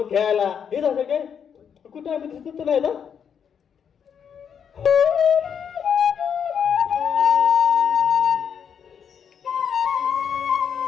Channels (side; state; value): right; quieter; 7.6 dB